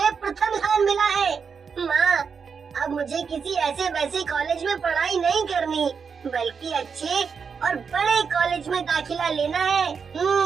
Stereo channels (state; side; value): quieter; left; 6.0 dB